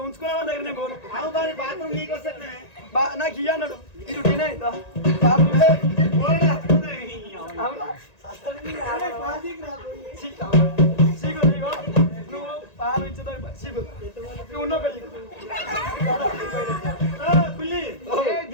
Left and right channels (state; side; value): late; right; 1.9 ms